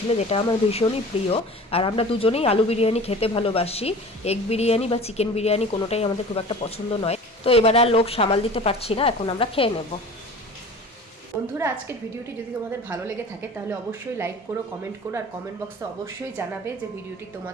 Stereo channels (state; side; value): normal; both; correlation 0.40